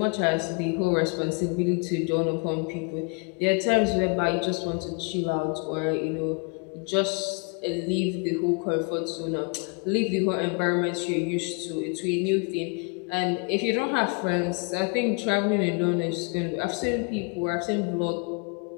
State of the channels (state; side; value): quieter; right; 33.8 dB